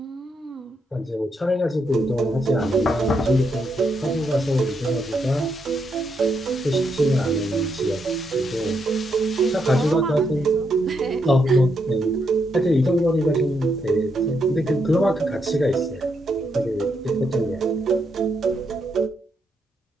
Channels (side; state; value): both; normal; correlation 0.79